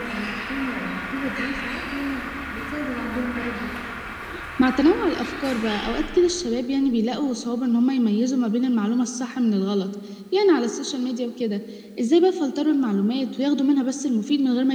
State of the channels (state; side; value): identical; both; correlation 1.00